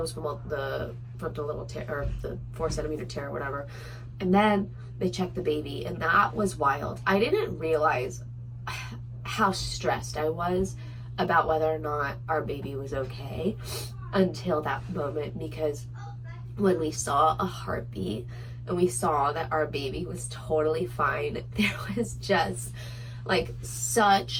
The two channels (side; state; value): both; identical; correlation 1.00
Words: from the little tear, or the 4-centimeter tear or whatever. And then they checked the baby, and that was wild. I didn't realize how stressed I was about whether or not our baby was okay until that moment, because when we saw a heartbeat and we saw that our baby was totally fine, there was just like